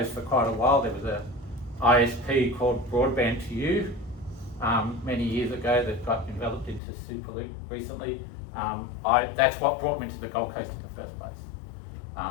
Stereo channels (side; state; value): right; drops out; at 6.8 s